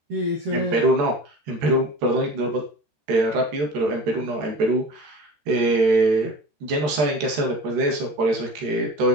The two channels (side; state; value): left; late; 13 ms